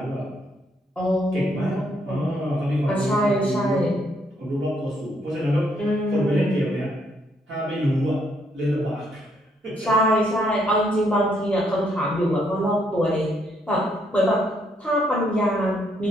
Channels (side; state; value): both; normal; correlation 0.72